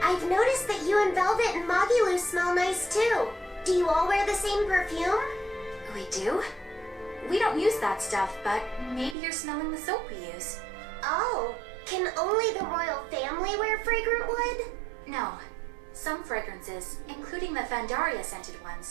I've noticed that you and Velvet and Magilu smell nice too. Do you all wear the same perfume? We do? We don't use that stuff, but maybe you're smelling the soap we use. Oh, can only the royal family wear fragrant wood? No. Some fragrances, including the Fandaria scented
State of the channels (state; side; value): drops out; left; at 9.2 s